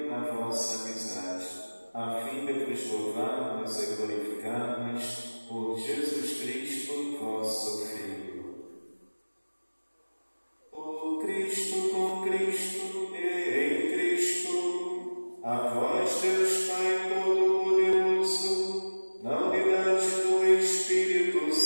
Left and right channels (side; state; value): both; inverted; correlation -1.00